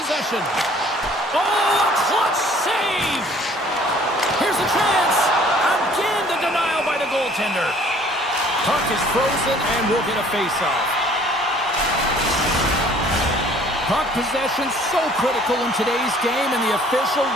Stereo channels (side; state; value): both; normal; correlation 0.55